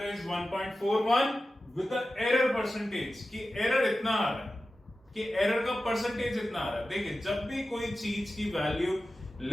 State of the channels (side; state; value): both; normal; correlation 0.94